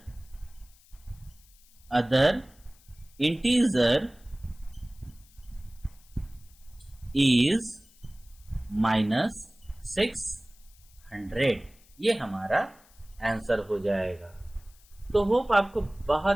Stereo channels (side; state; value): left; noise; hiss, 28 dB below the sound